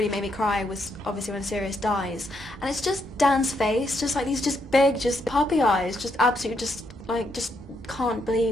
made me cry was obviously when Sirius dies. And it's just Dan's face, just like these just big, just puppy eyes, just absolutely just can't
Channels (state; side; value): normal; both; correlation 0.77